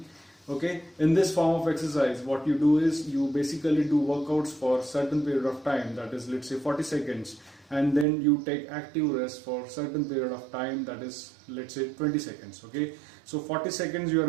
Okay, in this form of exercise, what you do is you basically do workouts for certain period of time, that is, let's say 40 seconds, and then you take active rest for certain period of time, that is, let's say 20 seconds. Okay, so 40 seconds you are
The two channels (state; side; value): drops out; left; at 8.1 s